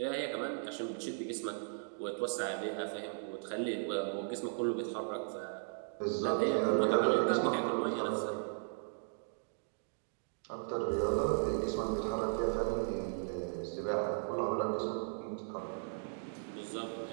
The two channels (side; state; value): left; silent; digital silence